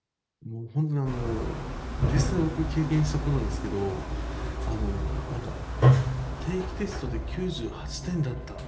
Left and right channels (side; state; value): both; identical; correlation 1.00